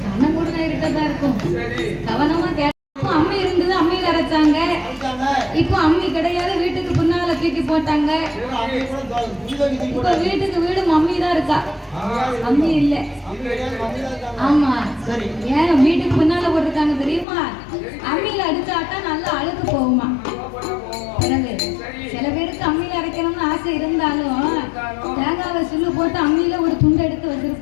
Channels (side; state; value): right; drops out; at 17.2 s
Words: கண்ணம் கூட இருக்கதான் இருக்கும். கவனமா கேட்டோம். அம்மி இருந்தது, அம்மியில அரைச்சாங்க. இப்போ அம்மி கிடையாது, வீட்டுக்கு பின்னால தூக்கி போட்டாங்க. இப்ப வீட்டுக்கு வீடு மம்மி தான் இருக்கா, அம்மி இல்ல. ஆமா, ஏன் வீட்டுக்கு பின்னால போட்டிருக்காங்க தெரியுமா? அம்மியில அடிச்சாட்டா நல்லா அழுக்கு போகுமா. பிறகு சில பேருக்கு அம்மியில அரைக்கணும்னு ஆசை இருந்தாலும் தேங்காவை சுள்ளு போட்டு அம்மியில ஒரு துண்டு எடுத்து